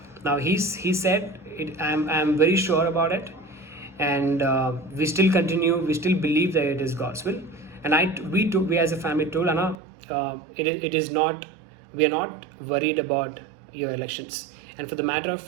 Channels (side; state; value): left; drops out; at 9.8 s